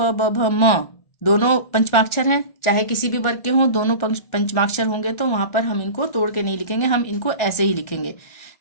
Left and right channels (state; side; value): late; right; 1.4 ms